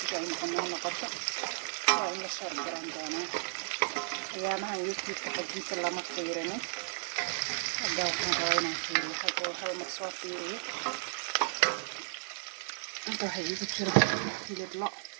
ay noqoto waa in la shar garan doona ayaamahan youtube-ka xajiinta lama fiirinin hadda waxaan rabaa inaan fiiriyo hal mar soo fiiriyo inta waxay igu jira hilib lo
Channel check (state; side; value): silent; left; 55 dB below the other